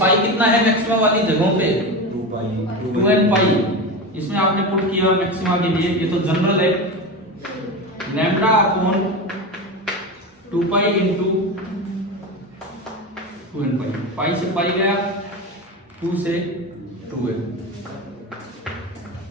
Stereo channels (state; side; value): normal; both; correlation 0.22